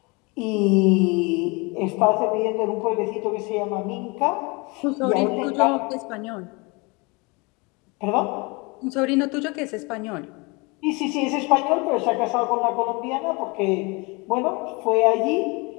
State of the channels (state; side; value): quieter; right; 27.9 dB